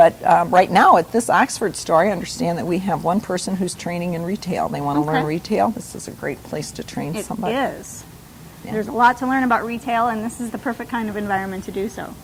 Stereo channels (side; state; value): both; identical; correlation 1.00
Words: right now at this Oxford store, I understand that we have one person who's training in retail. They want to learn retail. This is a great place to train somebody. It is. Yeah. There's a lot to learn about retail, and this is the perfect kind of environment to do so.